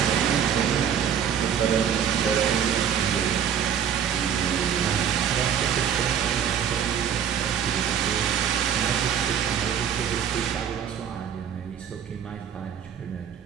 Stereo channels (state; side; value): quieter; left; 8.5 dB